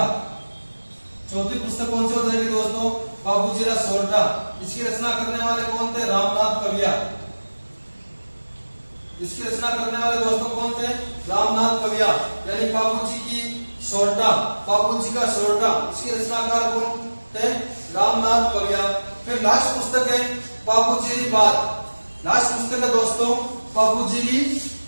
चौथी पुस्तक कौन सी हो जाएगी दोस्तों? बापूजीरा सोरठा। इसकी रचना करने वाले कौन थे? रामनाथ कविया। इसकी रचना करने वाले दोस्तों कौन थे? रामनाथ कविया। यानी बापूजी की सोरठा, बापूजी का सोरठा, इसके रचनाकार कौन थे? रामनाथ कविया। फिर लास्ट पुस्तक है बापूजीरी बात। लास्ट पुस्तक है दोस्तों बापूजीरी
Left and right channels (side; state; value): both; inverted; correlation -1.00